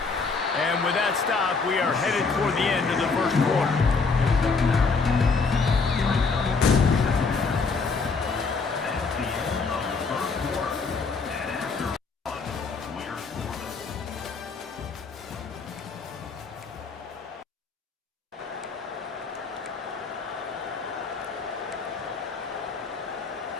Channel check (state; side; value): quieter; right; 4.5 dB